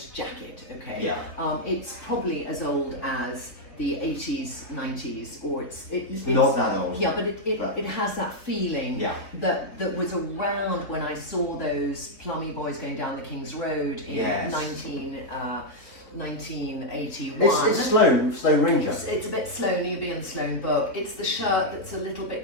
jacket, okay? Yeah. It's probably as old as the 80s, 90s, or it's not that old. Yeah, but it has that feeling that was around when I saw those plummy boys going down the King's Road in 1981. It's Sloane Ranger. It's a bit Sloane, you'll be in the Sloane book. It's the shirt that's a little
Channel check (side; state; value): right; late; 3.3 ms